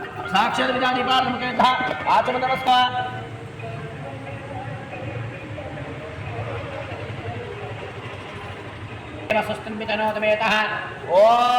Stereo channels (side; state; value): both; identical; correlation 1.00